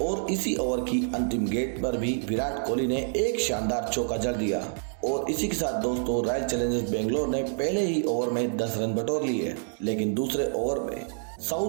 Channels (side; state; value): left; silent; digital silence